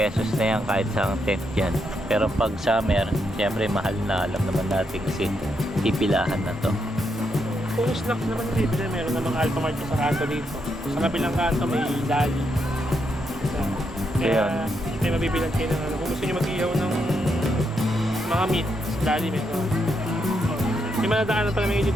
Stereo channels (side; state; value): both; normal; correlation 0.80